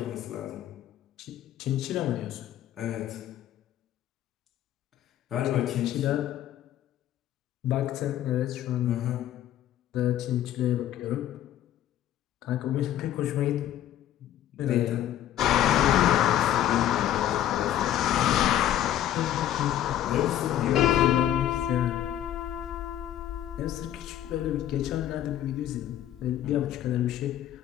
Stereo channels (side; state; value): right; quieter; 11.9 dB